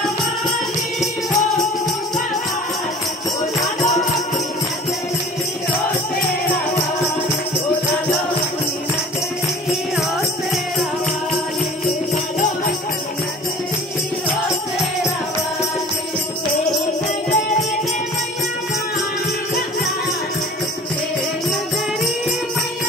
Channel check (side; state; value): both; normal; correlation 0.43